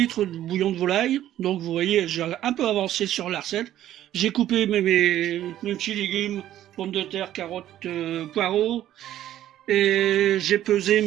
de bouillon de volaille, donc vous voyez, j'ai un peu avancé sur la recette. J'ai coupé mes petits légumes, pommes de terre, carottes, poireaux, et j'ai pesé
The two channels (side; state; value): left; quieter; 12.5 dB